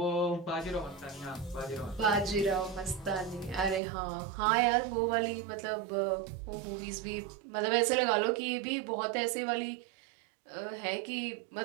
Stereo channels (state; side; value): drops out; left; at 3.8 s